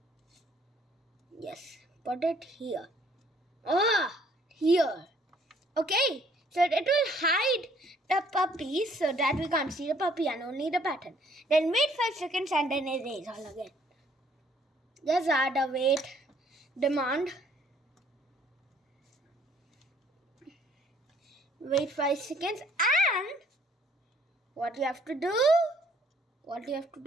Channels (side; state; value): both; normal; correlation 0.62